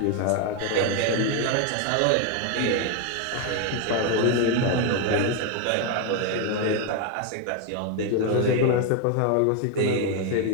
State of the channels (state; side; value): different; both; correlation 0.01